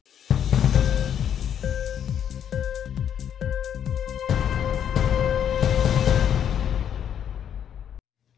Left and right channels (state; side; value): quieter; right; 9.2 dB